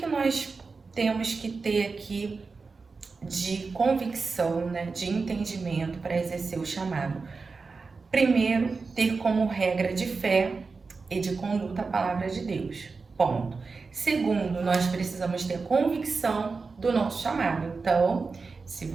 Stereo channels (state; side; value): quieter; left; 4.4 dB